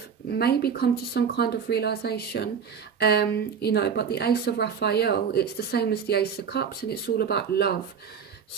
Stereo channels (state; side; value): quieter; left; 6.9 dB